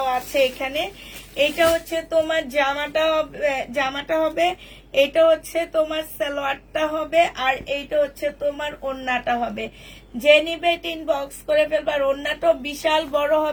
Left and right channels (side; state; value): both; identical; correlation 1.00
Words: আছে এখানে। এইটা হচ্ছে তোমার জামাটা হবে, এটা হচ্ছে তোমার সালোয়ারটা হবে, আর এইটা হচ্ছে তোমার ওড়নাটা হবে। যে নিবে ইনবক্স করে ফেলবার। ওড়নাটাও বিশাল বড়